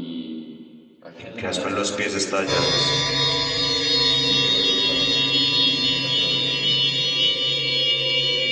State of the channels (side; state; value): both; identical; correlation 1.00